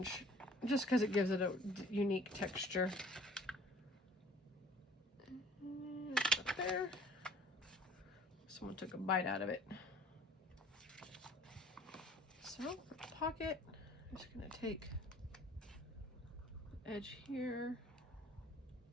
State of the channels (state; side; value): normal; both; correlation 0.52